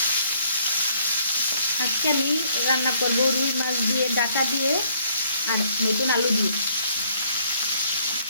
আজকে আমি রান্না করবো রুই মাছ দিয়ে, ডাঁটা দিয়ে আর নতুন আলু দিয়ে।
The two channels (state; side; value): inverted; both; correlation -0.65